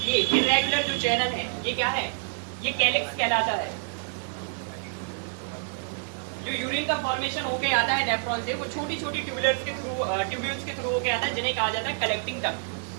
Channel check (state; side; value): silent; left; digital silence